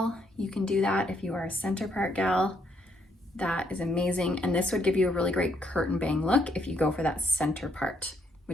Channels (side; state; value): both; normal; correlation 0.72